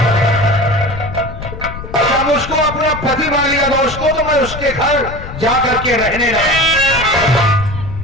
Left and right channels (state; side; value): noise; left; rumble, 10 dB below the sound